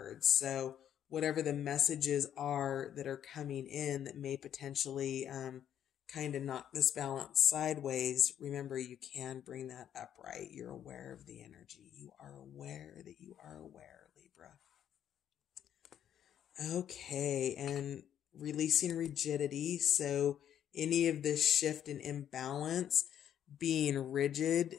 So whatever the messages are that are coming in that may potentially kind of knock this balance sideways, remember, you can bring that upright. You're aware of the energy. You are aware that you are aware, Libra. Okay, and releasing rigidity. So any of this shift and imbalance, being rigid,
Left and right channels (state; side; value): quieter; right; 10.0 dB